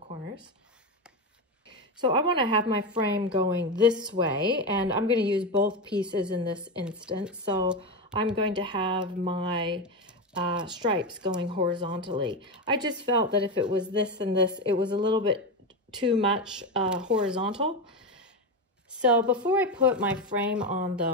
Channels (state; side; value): normal; both; correlation 0.15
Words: So I want to have my frame going this way, and I'm going to use both pieces in this instance. So I'm going to have my stripes going horizontally. I just felt that if it was this and this, it was a little bit too much horizontal. So before I put my frame on